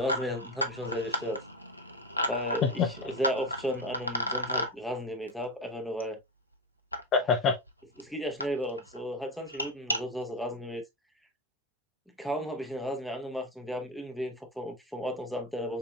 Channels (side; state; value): both; normal; correlation 0.16